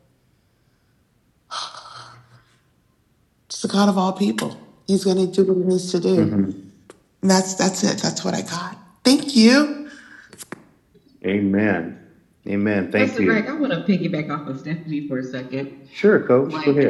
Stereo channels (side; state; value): both; identical; correlation 1.00